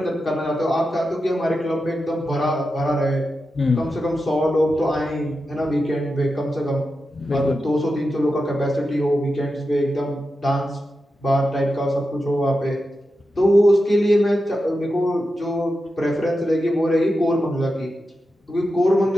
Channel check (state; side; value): normal; both; correlation 0.90